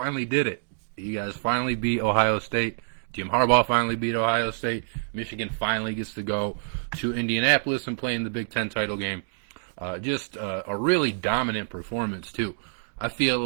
did it. You guys finally beat Ohio State. Jim Harbaugh finally beat Ohio State. Michigan finally gets to go to Indianapolis and play in the Big Ten title game. Just a really dominant performance, too. I feel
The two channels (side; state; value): left; silent; digital silence